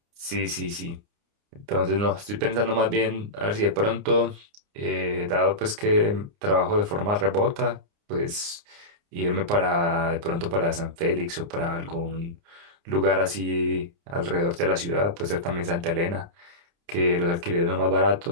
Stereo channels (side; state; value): left; late; 29 ms